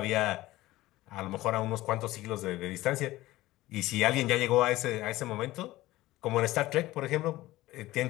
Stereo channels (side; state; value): right; quieter; 17.4 dB